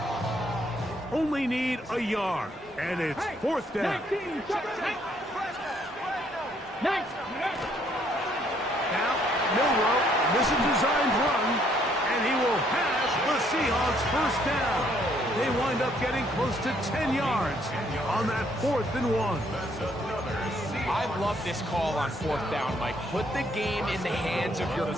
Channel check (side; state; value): both; normal; correlation 0.67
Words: Only need a yard, and it's fourth down. 19, Now, Milroe, this is a designed run, and he will pass the Seahawks first down. They wind up getting close to 10 yards on that 4th and 1. I love this call on fourth down, Mike. Put the game in the hands of your